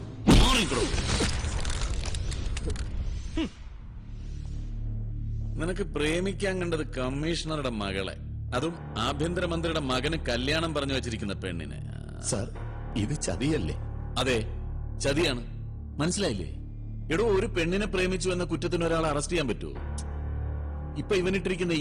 നിനക്ക് പ്രേമിക്കാൻ കണ്ടത് കമ്മീഷണറുടെ മകളെ, അതും ആഭ്യന്തരമന്ത്രിയുടെ മകന് കല്യാണം പറഞ്ഞു വെച്ചിരിക്കുന്ന പെണ്ണിനെ. സാർ, ഇത് ചതിയല്ലേ? അതെ, ചതിയാണ്. മനസ്സിലായില്ലേ? എടോ, ഒരു പെണ്ണിനെ പ്രേമിച്ചു എന്ന കുറ്റത്തിന് ഒരാളെ അറസ്റ്റ് ചെയ്യാൻ പറ്റുമോ? ഇപ്പൊ ഇവനിട്ടിരിക്കുന്ന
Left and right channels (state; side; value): identical; both; correlation 1.00